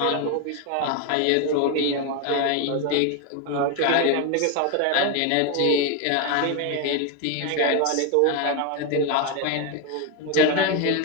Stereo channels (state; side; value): different; both; correlation 0.02